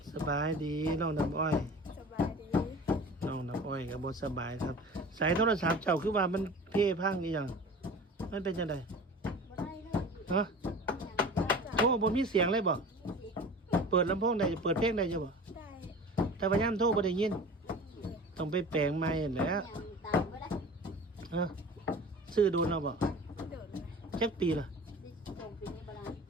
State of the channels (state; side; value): normal; both; correlation 0.39